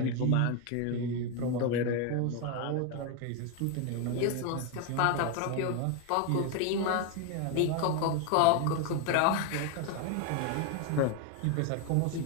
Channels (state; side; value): different; both; correlation 0.01